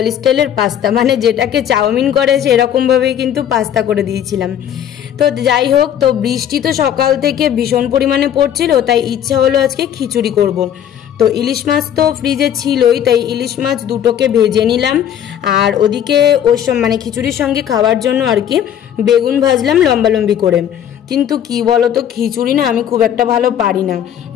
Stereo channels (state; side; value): quieter; right; 9.8 dB